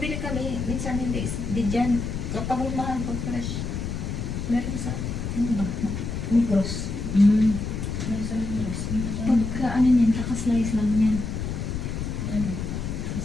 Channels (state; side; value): noise; left; rumble, 4 dB below the sound